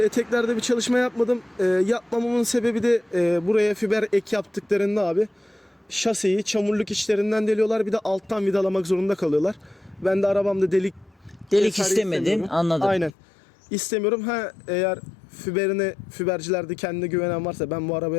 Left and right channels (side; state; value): right; drops out; at 13.1 s